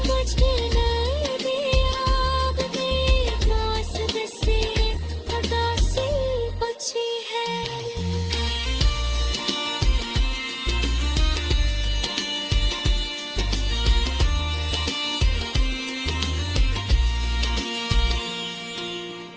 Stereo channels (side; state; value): both; identical; correlation 1.00